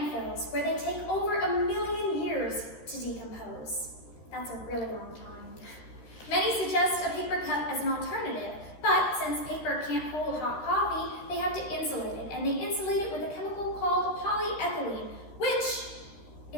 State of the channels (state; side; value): late; right; 13 ms